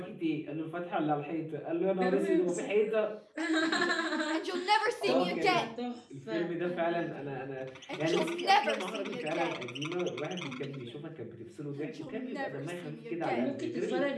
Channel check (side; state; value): both; identical; correlation 1.00